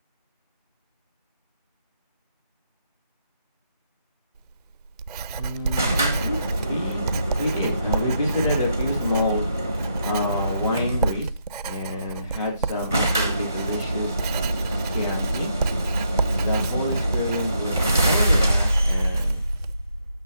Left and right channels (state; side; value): inverted; both; correlation -0.76